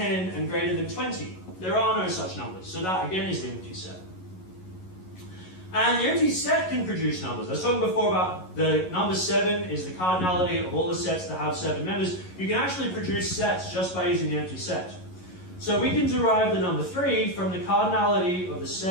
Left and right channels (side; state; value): right; late; 11 ms